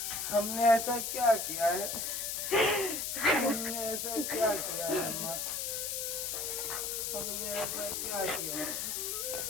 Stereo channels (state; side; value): noise; left; hiss, 2 dB below the sound